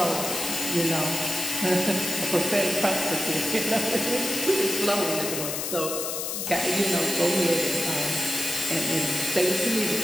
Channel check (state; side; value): noise; left; hiss, 3 dB below the sound